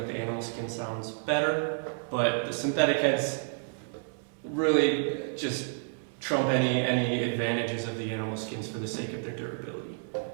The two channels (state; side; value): silent; left; 58 dB below the other